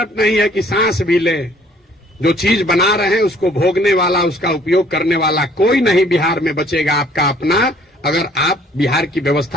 नहीं है कि सांस भी ले। जो चीज बना रहे हैं उसको भोगने वाला, उसका उपयोग करने वाला कोई नहीं बिहार में बचेगा आपका अपना, अगर आप बिहार की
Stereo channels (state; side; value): normal; both; correlation 0.58